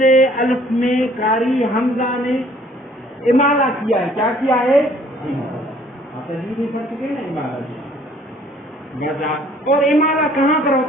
الف میں قاری حمزہ نے امالہ کیا ہے. کیا کیا ہے؟ اور امالہ کہاں پر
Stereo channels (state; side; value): normal; both; correlation 0.58